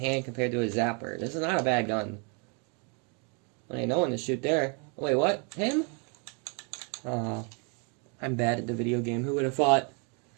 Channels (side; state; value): left; quieter; 35.6 dB